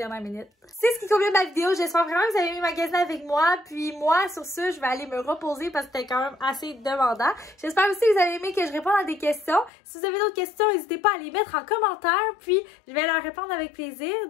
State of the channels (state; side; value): drops out; right; at 9.7 s